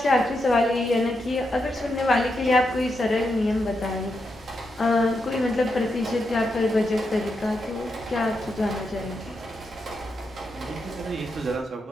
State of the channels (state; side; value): normal; both; correlation 0.84